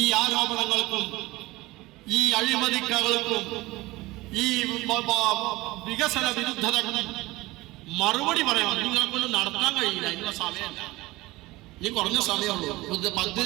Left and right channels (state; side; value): quieter; left; 20.1 dB